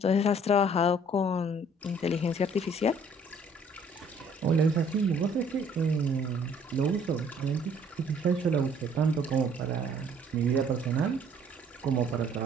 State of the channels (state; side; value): normal; both; correlation 0.58